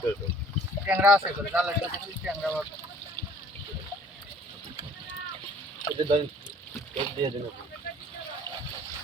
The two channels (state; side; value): normal; both; correlation 0.54